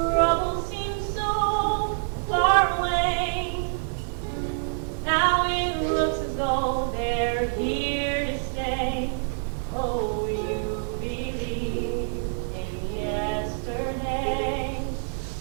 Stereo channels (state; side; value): silent; left; 61 dB below the other